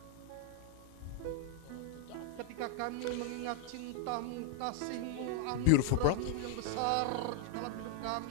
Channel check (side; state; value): both; different; correlation 0.00